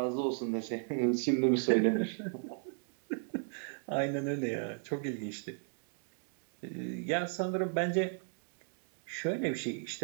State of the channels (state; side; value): silent; left; 54 dB below the other